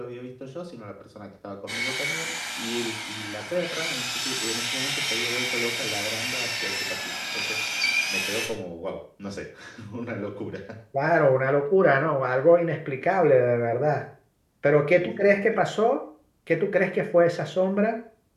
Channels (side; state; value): both; identical; correlation 1.00